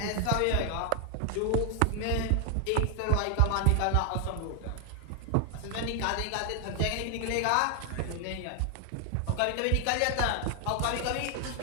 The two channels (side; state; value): both; different; correlation 0.00